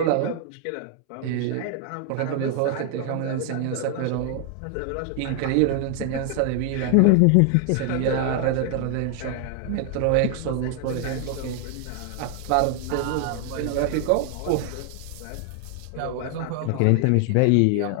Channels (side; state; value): both; different; correlation 0.00